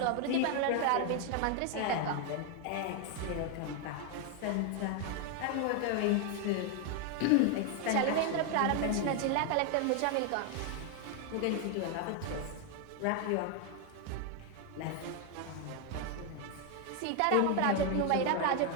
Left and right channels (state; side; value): different; both; correlation 0.01